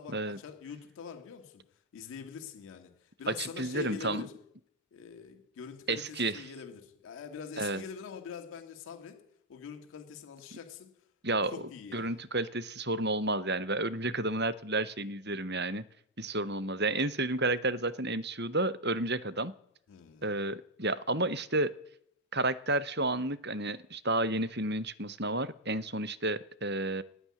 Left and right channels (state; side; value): normal; both; correlation -0.01